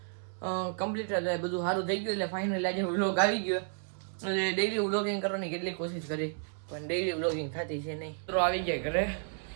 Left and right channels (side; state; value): left; silent; digital silence